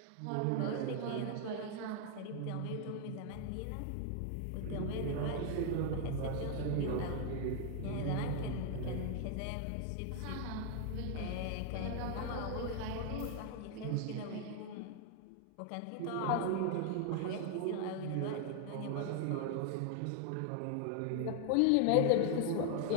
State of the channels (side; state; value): both; different; correlation 0.00